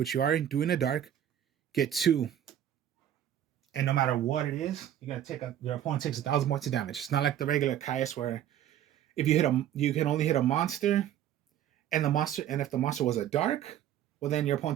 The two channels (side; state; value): left; quieter; 10.8 dB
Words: you are doing a dark, get 2. And no matter what it is, you're gonna take your opponent takes 1,000 points of damage. It's not like the regular Caius where if you hit you can only hit a monster, and if the monster was a dark, well then your